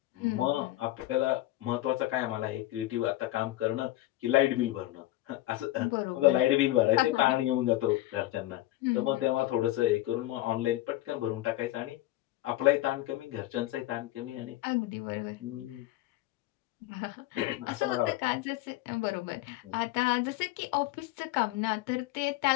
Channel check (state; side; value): quieter; right; 16.5 dB